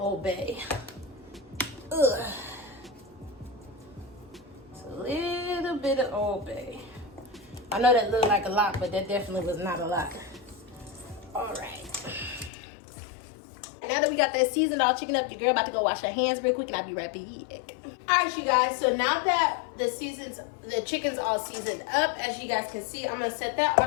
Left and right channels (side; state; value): right; drops out; at 12.5 s